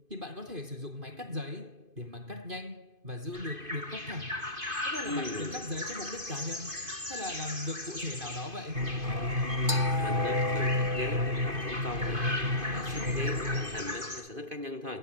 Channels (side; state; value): left; late; 2.5 ms